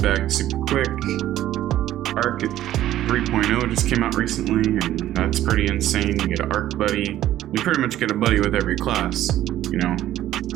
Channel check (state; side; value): quieter; left; 13.2 dB